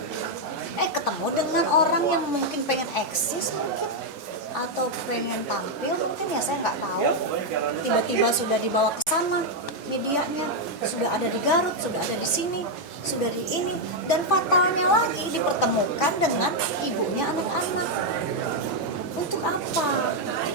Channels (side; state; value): both; normal; correlation 0.00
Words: Ketemu dengan orang yang mungkin pengen eksis mungkin, atau pengen tampil mungkin, ya saya nggak tahu. Tiba-tiba sudah dibawa ke sana medianya, sudah ada di Garut, sudah ada di sini, sudah di ini, dan fatalnya lagi dipertemukan dengan ibunya anak-anak. Untuk apa?